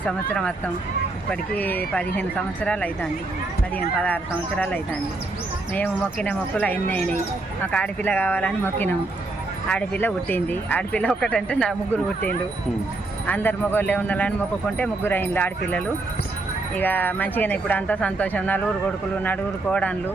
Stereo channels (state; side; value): quieter; left; 3.1 dB